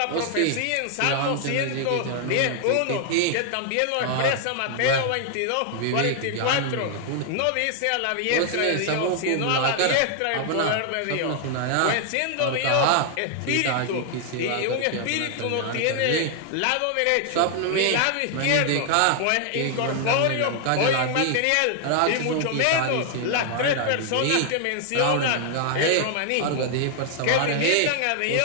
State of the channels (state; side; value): different; both; correlation 0.00